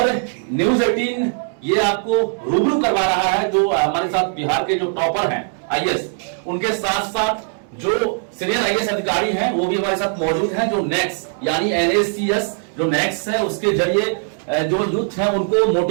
न्यूज 18 ये आपको रूबरू करवा रहा है जो हमारे साथ बिहार के जो टॉपर हैं आईएएस, उनके साथ साथ जो सीनियर आईएएस अधिकारी हैं वो भी हमारे साथ मौजूद हैं, जो नेक्स्ट यानी एनएससीएस जो नेक्स्ट है उसके जरिए जो यूथ है उनको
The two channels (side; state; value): left; silent; 62 dB below the other